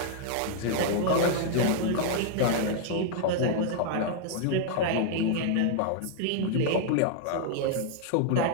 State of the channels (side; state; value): both; different; correlation -0.01